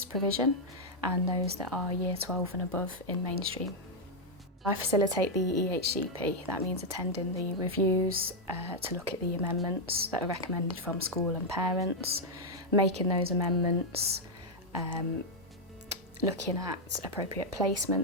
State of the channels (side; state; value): both; normal; correlation -0.01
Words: provision and those that are Year 12 and above in mainstream. I facilitate the EHCP. That means attending the reviews to look at the amendments that are recommended from school and parents, making those amendments, looking at appropriate